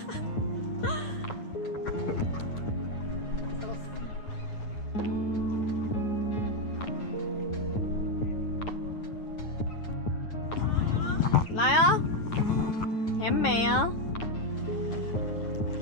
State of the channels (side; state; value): right; late; 9.4 ms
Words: 来啊，甜美啊！